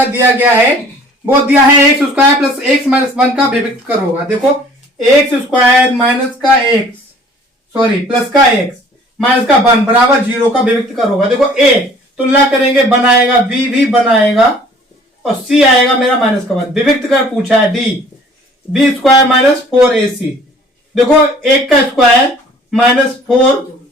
दिया गया है वो दिया है x square plus x minus 1 का विभक्त कर होगा। देखो एक्स स्क्वायर माइनस का एक्स प्लस का एक्स माइनस का 1 बराबर 0 का विभक्त कर होगा। देखो ए तुलना करेंगे बनाएगा बी भी बनाएगा और सी आएगा मेरा माइनस का 1। विभक्त कर पूछा है D B square minus 4ac। देखो एक का स्क्वायर माइनस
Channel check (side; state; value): both; normal; correlation 0.52